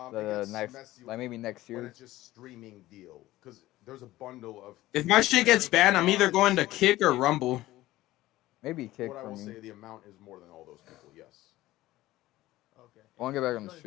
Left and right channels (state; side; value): quieter; right; 16.5 dB